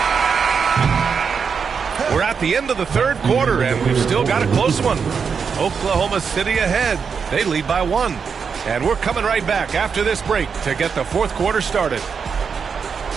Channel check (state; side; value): quieter; left; 6.1 dB